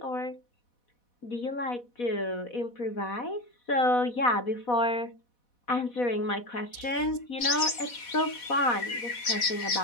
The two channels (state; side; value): late; right; 4.1 ms